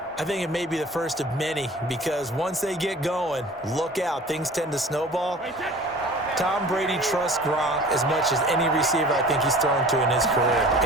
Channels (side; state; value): both; normal; correlation 0.44